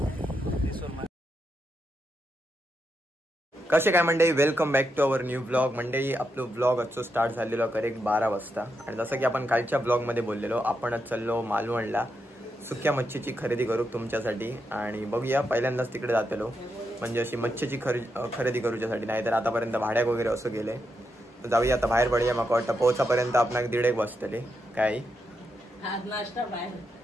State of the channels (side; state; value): both; normal; correlation 0.84